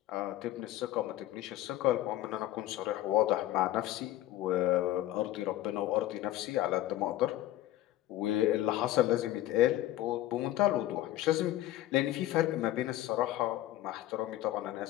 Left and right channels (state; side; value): quieter; right; 14.4 dB